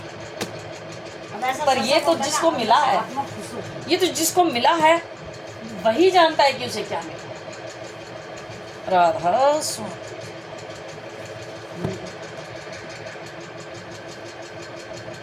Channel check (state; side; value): identical; both; correlation 1.00